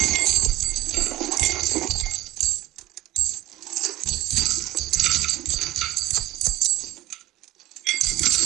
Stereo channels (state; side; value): quieter; left; 16.3 dB